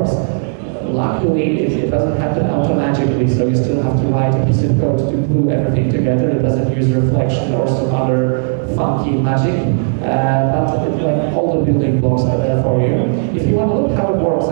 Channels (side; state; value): left; silent; 70 dB below the other